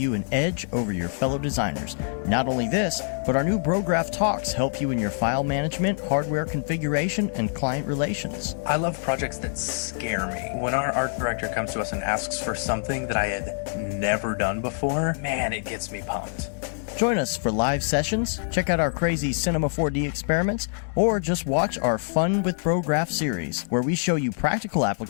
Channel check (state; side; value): silent; right; digital silence